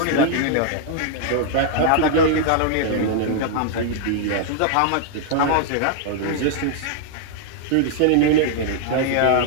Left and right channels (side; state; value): both; different; correlation -0.01